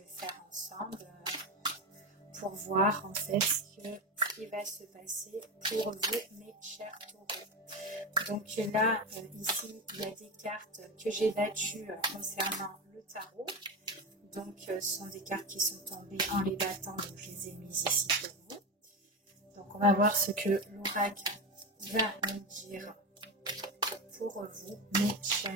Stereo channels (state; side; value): normal; both; correlation 0.18